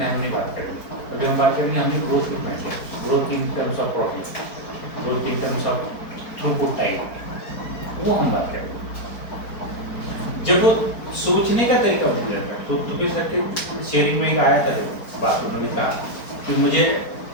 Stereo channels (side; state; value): right; late; 4.4 ms